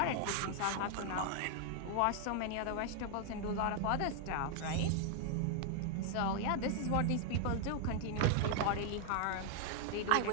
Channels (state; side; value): different; both; correlation 0.00